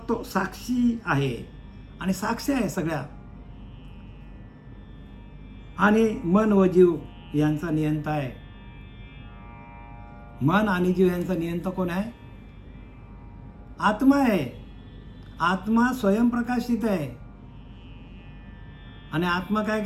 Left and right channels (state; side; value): identical; both; correlation 1.00